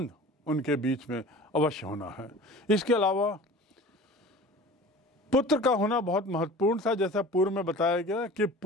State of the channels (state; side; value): normal; both; correlation 0.40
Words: उनके बीच में अवश्य होना है। इसके अलावा पुत्र का होना बहुत महत्वपूर्ण था। जैसा पूर्व में बताया गया कि